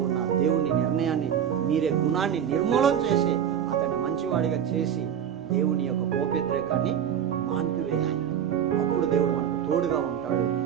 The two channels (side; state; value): left; quieter; 9.1 dB